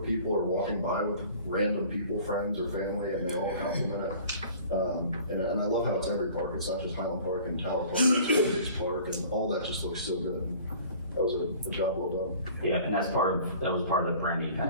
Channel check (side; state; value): both; inverted; correlation -0.47